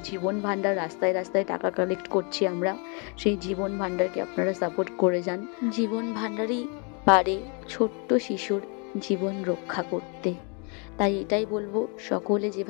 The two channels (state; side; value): quieter; right; 35.7 dB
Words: জীবন ভাণ্ডার রাস্তায় রাস্তায় টাকা কালেক্ট করছি আমরা, সেই জীবন ভাণ্ডারকে আপনারা সাপোর্ট করে যান। জীবন ভাণ্ডারই পারে ছোট্ট শিশুর জীবন রক্ষা করতে। তাই এটাই বলবো, সকলে